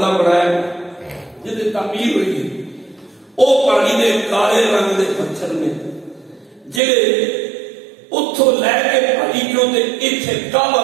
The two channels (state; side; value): drops out; left; at 6.8 s